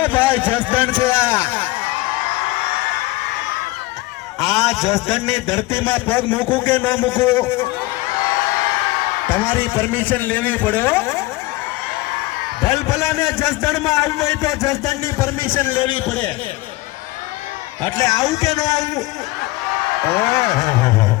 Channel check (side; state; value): right; quieter; 19.9 dB